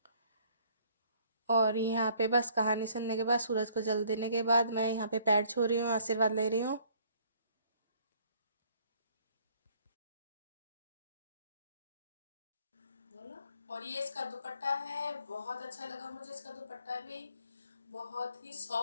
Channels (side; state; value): both; inverted; correlation -0.61